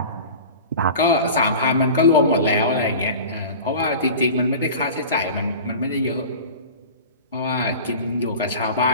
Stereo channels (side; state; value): both; inverted; correlation -0.36